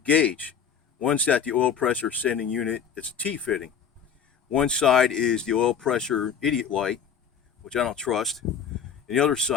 One's at the oil pressure sending unit, it's a T-fitting. One side is the oil pressure idiot light, which I don't trust, and the other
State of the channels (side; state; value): right; quieter; 7.3 dB